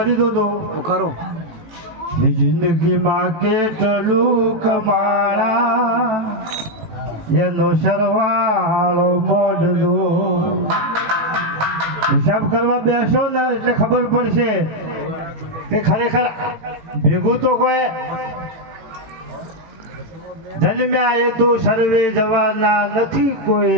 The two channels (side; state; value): left; late; 18 ms